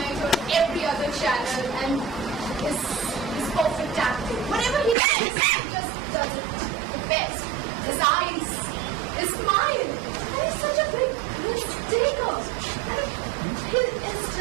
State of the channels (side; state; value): left; drops out; at 5.0 s